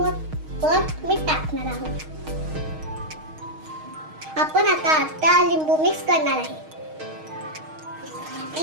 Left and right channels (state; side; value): late; left; 6.4 ms